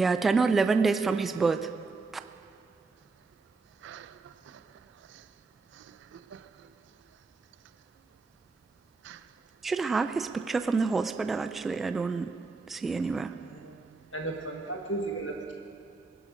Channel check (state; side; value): quieter; left; 4.0 dB